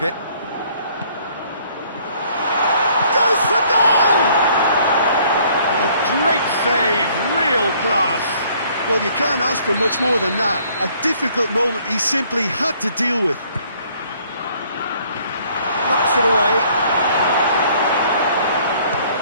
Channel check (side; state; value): both; inverted; correlation -0.60